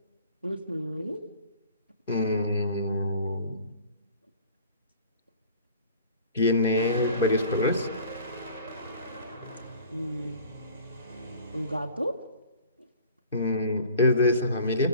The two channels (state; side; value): inverted; both; correlation -0.48